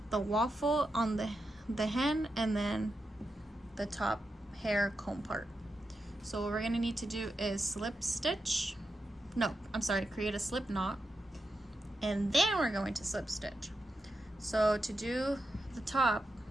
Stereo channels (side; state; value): both; normal; correlation 0.88